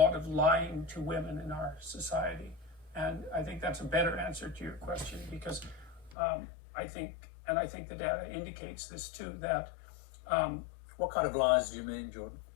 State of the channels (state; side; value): drops out; right; at 6.2 s